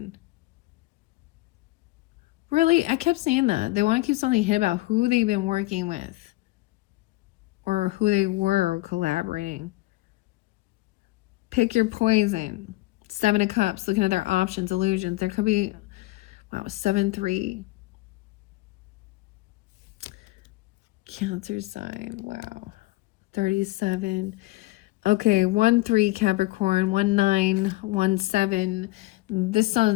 Really, I kept saying that. They want to keep something hidden about who they've been working with, or who they were collaborating. Pick your poison. 7 of Cups, looking at their options, illusions. There could be, wow, 7-3. Cancer sign, wow. 37. Okay, 1-3 Capricorn, 1-9, 1-7. This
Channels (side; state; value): right; quieter; 19.6 dB